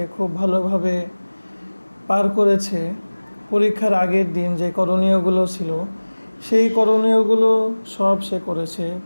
খুব ভালোভাবে পার করেছে। পরীক্ষার আগের দিন যে করণীয়গুলো ছিল সেই করণীয়গুলো সব সে করেছে,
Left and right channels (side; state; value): both; inverted; correlation -1.00